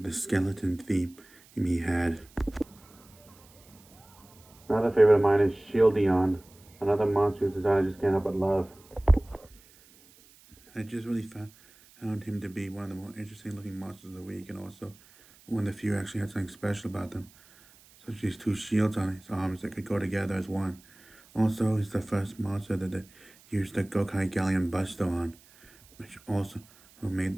skeleton theme he had. Another favorite of mine is Shieldion, another monster whose design I just can't help but love. I just really found him to be one of the more interesting looking monsters of the week, and also one of the few actually had something special about them, such as these two shields on his arms that could go together as one. Also, he's the first monster that they used the Gokai Galleon Buster on, which also made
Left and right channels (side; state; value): right; noise; hiss, 26 dB below the sound